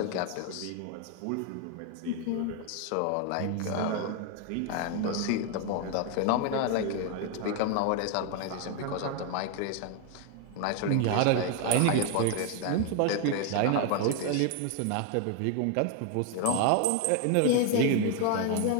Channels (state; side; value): different; both; correlation 0.01